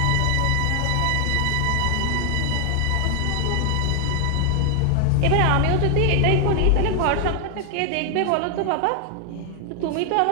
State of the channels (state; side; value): different; both; correlation 0.00